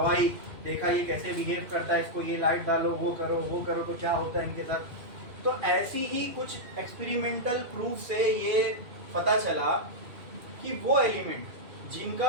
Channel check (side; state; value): left; late; 2.6 ms